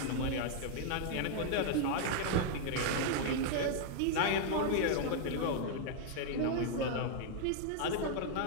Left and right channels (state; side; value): different; both; correlation -0.01